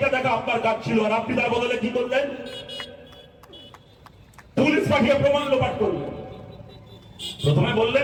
দেখা আপনার কাজ ছিল। আর আপনি তার বদলে কি করলেন? পুলিশ পাঠিয়ে প্রমাণ লোপাট করলেন। প্রথমে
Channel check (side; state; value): both; identical; correlation 1.00